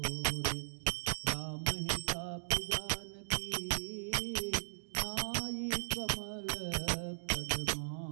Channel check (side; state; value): left; silent; digital silence